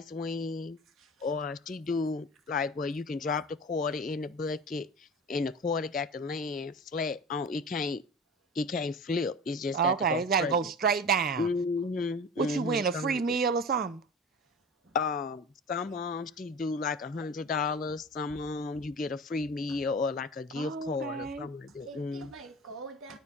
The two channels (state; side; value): normal; both; correlation 0.35